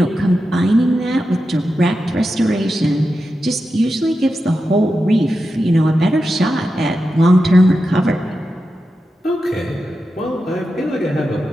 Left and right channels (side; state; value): both; normal; correlation 0.90